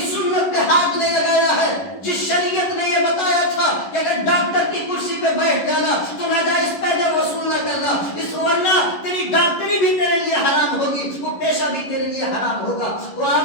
سنت پہ ہاتھ نہیں لگایا ہے جس شریعت نے یہ بتایا تھا کہ اگر ڈاکٹر کی کرسی پہ بیٹھ جانا تو ناجائز پیسے وصول نہ کرنا، اس ورنہ تیری ڈاکٹری بھی تیرے لیے حرام ہوگی، وہ پیشہ بھی تیرے لیے حرام ہوگا۔ وہ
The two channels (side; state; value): right; late; 11 ms